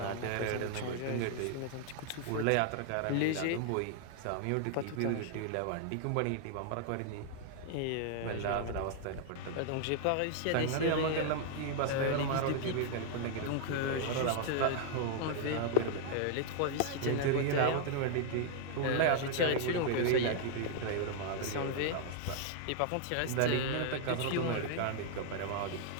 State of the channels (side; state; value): both; different; correlation 0.00